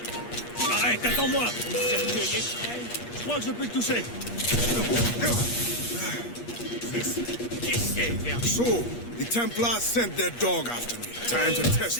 Arrête, attends-moi! Je crois que je peux te toucher. So, the Templars sent their dog after me. Time to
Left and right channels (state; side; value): late; right; 8.4 ms